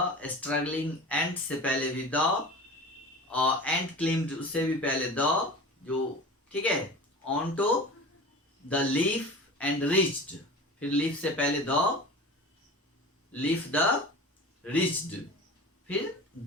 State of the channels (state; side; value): normal; both; correlation 0.35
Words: स्ट्रगलिंग एंड से पहले भी द, और एंड क्लिम्ड उससे भी पहले द, जो ठीक है, on to the leaf and reached, फिर लीफ से पहले द, लीफ द रीच्ड, फिर